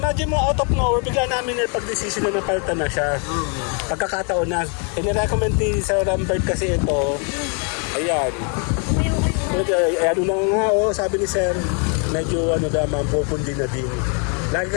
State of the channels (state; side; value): quieter; right; 39.1 dB